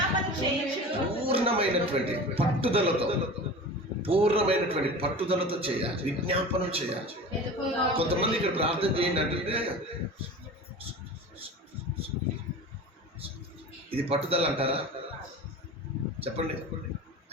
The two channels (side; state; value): both; normal; correlation 0.35